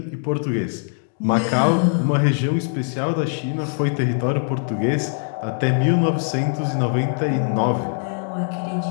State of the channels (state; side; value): silent; right; 61 dB below the other